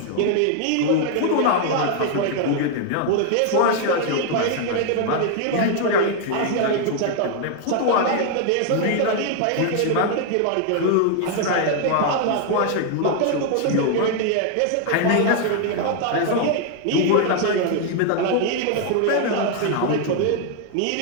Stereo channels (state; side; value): different; both; correlation 0.00